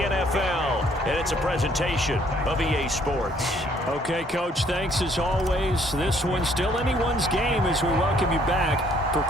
and it's a presentation of EA Sports. Okay, Coach, thanks as always. This one's still anyone's game as we welcome you back for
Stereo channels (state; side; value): normal; both; correlation 0.64